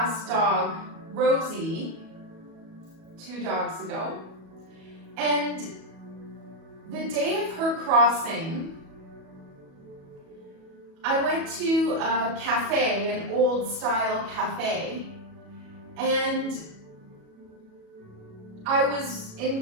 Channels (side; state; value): left; late; 37 ms